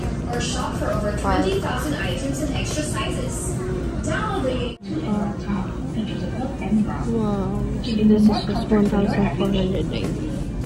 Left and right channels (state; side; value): identical; both; correlation 1.00